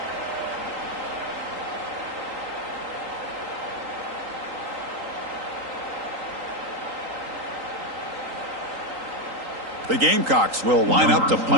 The Gamecocks will line up to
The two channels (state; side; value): late; left; 3.8 ms